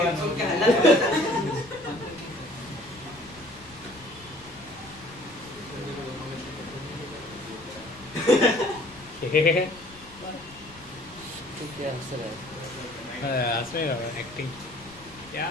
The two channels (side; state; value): left; noise; rumble, 22 dB below the sound